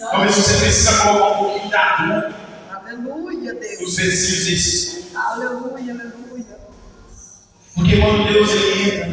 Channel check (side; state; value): both; identical; correlation 1.00